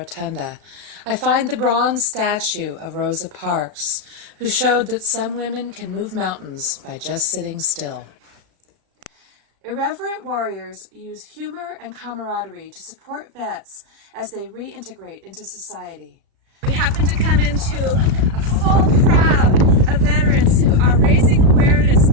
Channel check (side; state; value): left; late; 35 ms